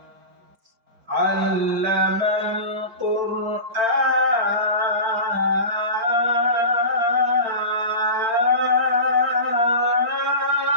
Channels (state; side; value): late; left; 4.4 ms